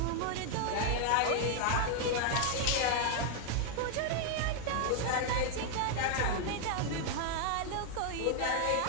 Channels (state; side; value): different; both; correlation 0.00